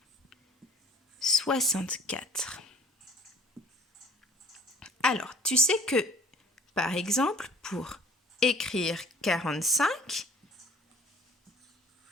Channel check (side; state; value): both; normal; correlation 0.51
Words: 64. Alors, tu sais que, par exemple, pour écrire 45,